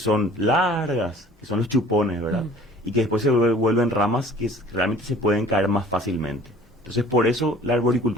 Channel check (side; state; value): both; normal; correlation 0.50